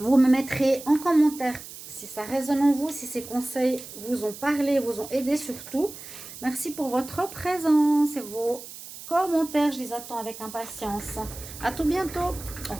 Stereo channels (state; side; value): noise; right; hiss, 14 dB below the sound